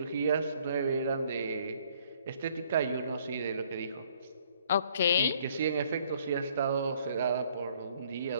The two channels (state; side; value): inverted; both; correlation -0.63